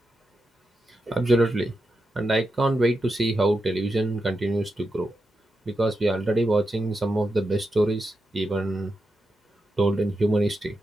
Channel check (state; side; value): normal; both; correlation 0.88